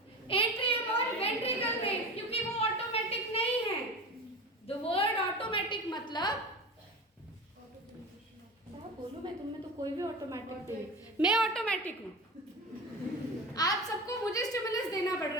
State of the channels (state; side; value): normal; both; correlation 0.30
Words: एट्रियम और वेंट्रिकल में, क्योंकि वो ऑटोमेटिक नहीं है। द वर्ड ऑटोमेटिक मतलब बोलो, मैं तुम में तो कोई भी ऑटोमेटिक नहीं, मैं ऑटोमेटिक हूँ। आप सबको मुझे स्टिमुलस देना पड़